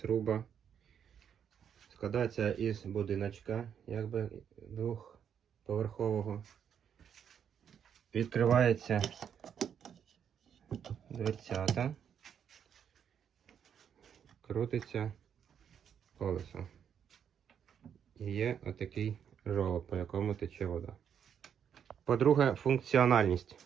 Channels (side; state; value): left; quieter; 8.2 dB